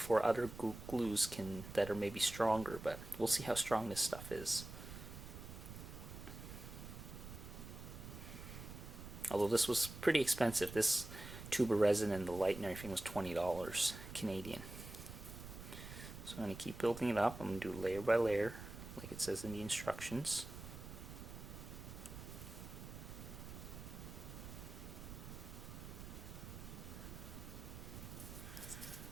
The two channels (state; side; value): noise; right; rumble, 11 dB below the sound